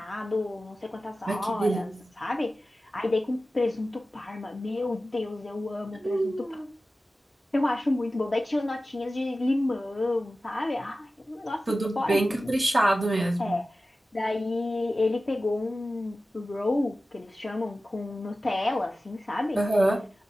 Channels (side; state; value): both; normal; correlation 0.95